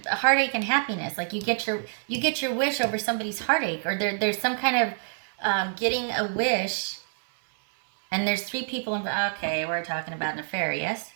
a heartache and happiness. Like you get your wish over somebody's heartache, or there's some kind of getting a wish, and there's three people involved. Okay, we're talking about an affair, yes?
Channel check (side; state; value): left; silent; 60 dB below the other